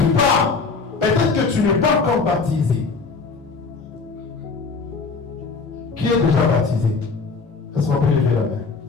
pas. Peut-être que tu n'es pas encore baptisé. Qui est déjà baptisé? Est-ce qu'on peut lever la main?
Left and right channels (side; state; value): right; quieter; 4.5 dB